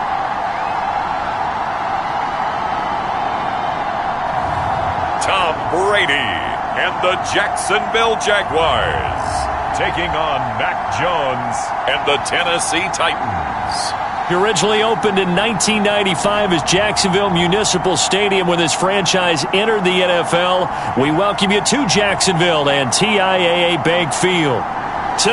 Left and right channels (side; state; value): both; identical; correlation 1.00